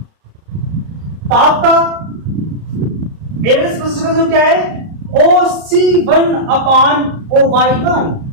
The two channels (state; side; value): late; left; 33 ms